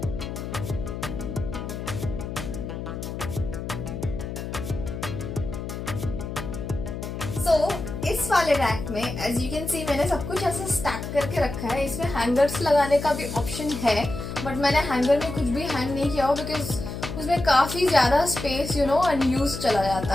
So, इस वाले rack में as you can see मैंने सब कुछ ऐसे स्टैक करके रखा है. इसमें हैंगर्स लगाने का भी ऑप्शन है, बट मैंने हैंगर में कुछ भी हैंग नहीं किया हो बिकॉज उसमें काफी ज्यादा स्पेस अनयूज चला जाता.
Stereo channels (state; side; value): noise; left; hum, 7 dB below the sound